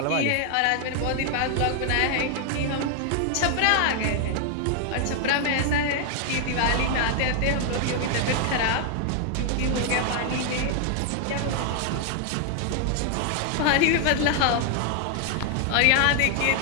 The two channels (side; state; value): both; different; correlation 0.00